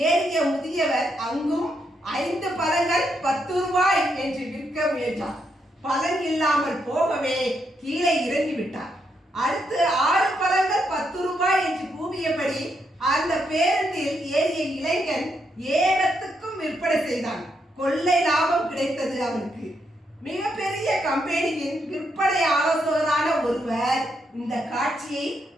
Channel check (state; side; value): normal; both; correlation 0.79